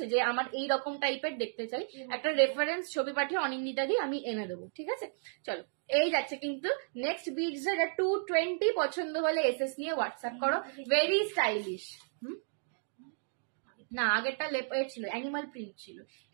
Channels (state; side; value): silent; left; digital silence